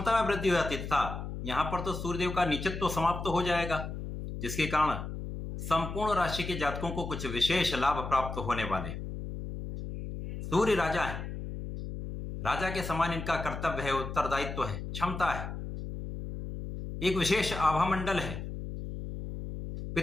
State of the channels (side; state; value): left; noise; hum, 7 dB below the sound